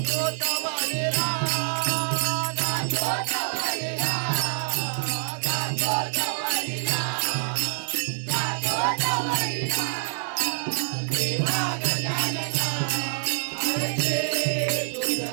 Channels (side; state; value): left; silent; digital silence